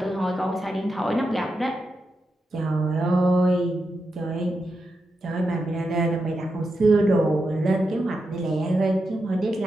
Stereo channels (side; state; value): both; normal; correlation 0.87